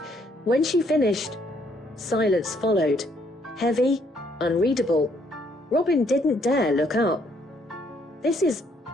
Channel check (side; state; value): both; normal; correlation 0.68